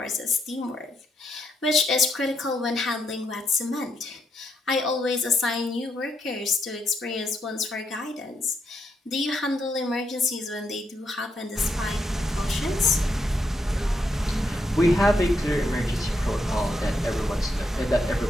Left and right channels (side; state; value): both; normal; correlation 0.79